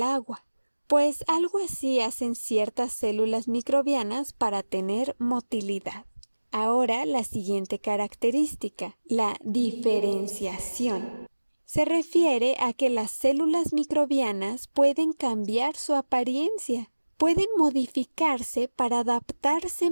agua. Pues algo así hacen ciertas células microbianas para tener motilidad. Ahora la siguiente característica, la diferenciación. Se refiere a que las células microbianas pueden cambiar su apariencia, pueden modificarse para adaptarse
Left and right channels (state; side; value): inverted; both; correlation -1.00